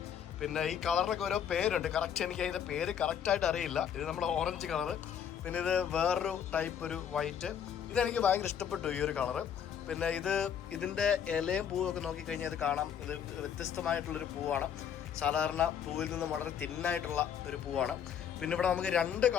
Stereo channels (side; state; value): right; quieter; 8.5 dB